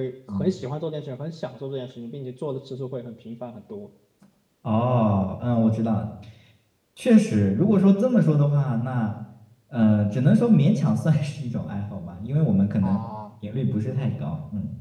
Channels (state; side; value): identical; both; correlation 1.00